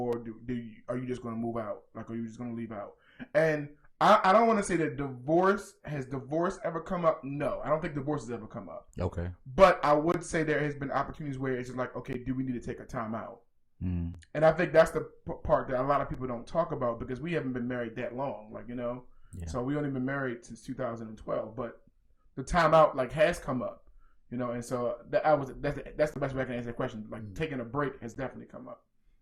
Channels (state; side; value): identical; both; correlation 1.00